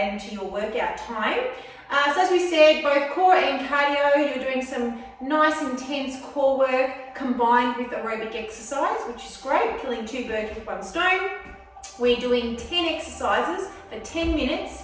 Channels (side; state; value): both; identical; correlation 1.00